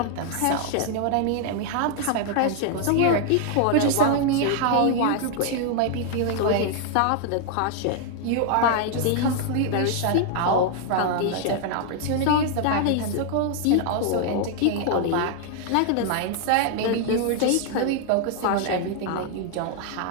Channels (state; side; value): different; both; correlation 0.00